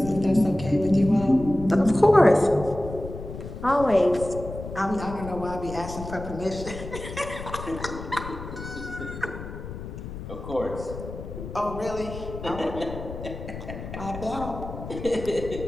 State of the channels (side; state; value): left; noise; rumble, 10 dB below the sound